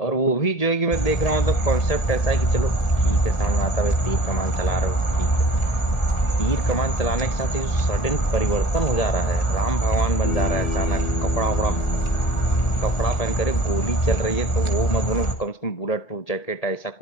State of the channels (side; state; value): right; late; 1.4 ms